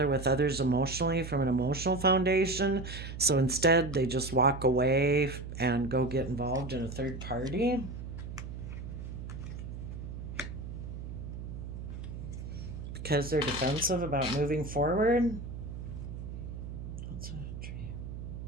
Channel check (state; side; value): noise; right; hum, 8 dB below the sound